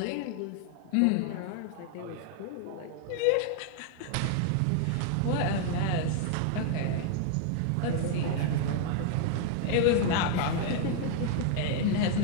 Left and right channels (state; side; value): different; both; correlation 0.00